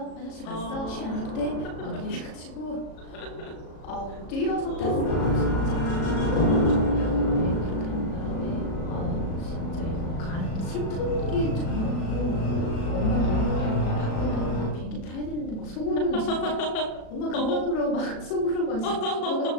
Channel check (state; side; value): late; right; 37 ms